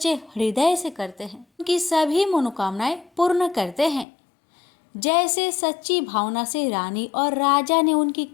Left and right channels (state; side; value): drops out; right; at 4.0 s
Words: हृदय से करते हैं, उनकी सभी मनोकामनाएं पूर्ण करते हैं। जैसे सच्ची भावना से रानी और राजा ने उनकी